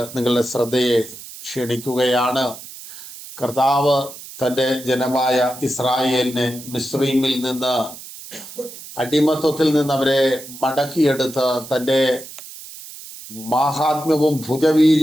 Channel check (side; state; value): right; noise; hiss, 15 dB below the sound